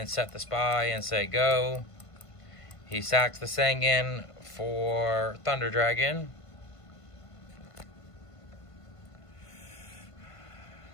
set the Spy and say go. He sacks the Sangan for Thunder Dragon.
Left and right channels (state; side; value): late; right; 1.5 ms